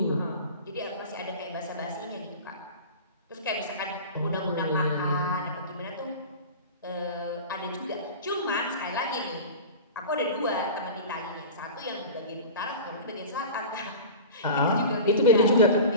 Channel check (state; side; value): inverted; both; correlation -0.34